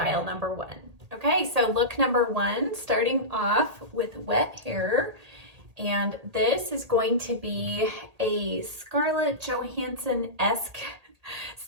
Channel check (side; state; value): left; late; 1.8 ms